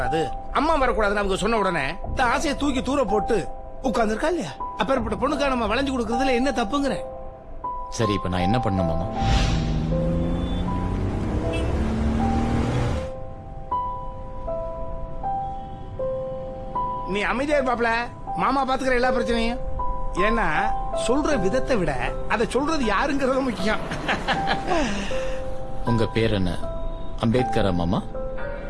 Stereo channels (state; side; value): identical; both; correlation 1.00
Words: அம்மா வரக்கூடாதுன்னு அவங்க சொன்ன உடனே இந்த ஆசையை தூக்கி தூர போட்டு உட்கார்ந்துருக்கா இல்லையா? அப்பேற்பட்ட பொண்ணுக்கா நம்ம வளைஞ்சு கொடுக்கறதுல என்ன தப்புங்கிற? சரி இப்ப நான் என்ன பண்ணணும் மாமா? நீ அமைதியா இருப்பாப்ல, மாமா பாத்துக்கிற எல்லா பிரச்சனையும். ஏன்னா சொல்ற விதத்தை விட அதை சொல்றது யாருங்கிறது முக்கியம். உங்க பேர் என்ன? அம்பேத்கரா மாமா?